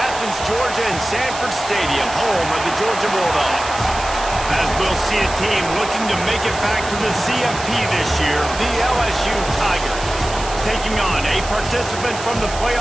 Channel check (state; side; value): noise; right; hiss, 11 dB below the sound